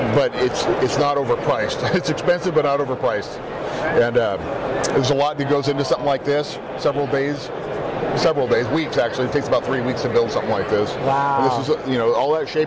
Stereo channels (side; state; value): both; identical; correlation 1.00